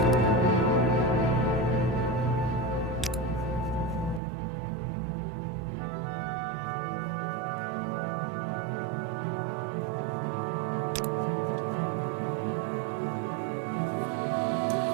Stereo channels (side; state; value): left; drops out; at 4.2 s